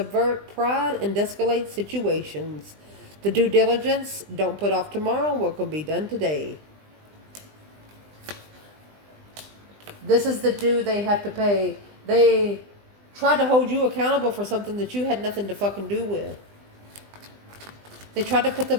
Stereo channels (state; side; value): late; left; 20 ms